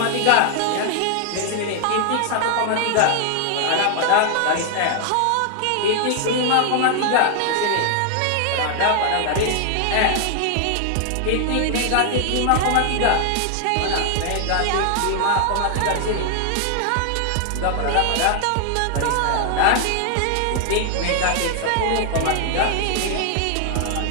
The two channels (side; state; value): both; different; correlation 0.00